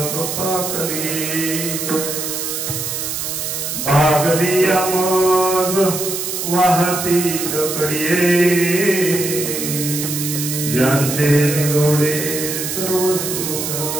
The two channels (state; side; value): noise; right; hiss, 4 dB below the sound